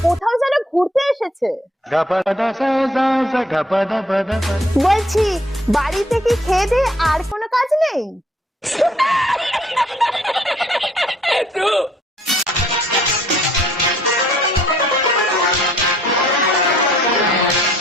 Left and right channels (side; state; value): both; normal; correlation 0.63